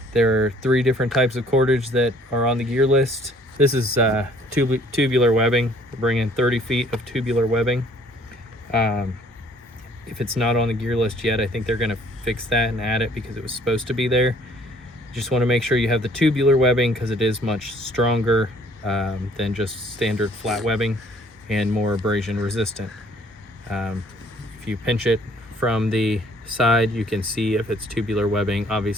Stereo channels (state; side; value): normal; both; correlation 0.59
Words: there are 3 different types of cordage that are on the gear list. This is tubular webbing. We're bringing 30 feet of tubular webbing. If it's not on the gear list yet, I think they're going to fix that and add it because it was supposed to be there. Just want to make sure you have the tubular webbing because it is much stronger than just standard flat webbing and more abrasion resistant. If you pinch it from the side, you can see if it's tubular webbing.